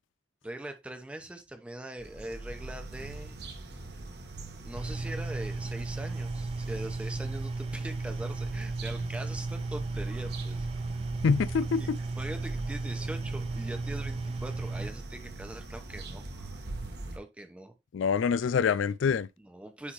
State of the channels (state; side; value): normal; both; correlation 0.54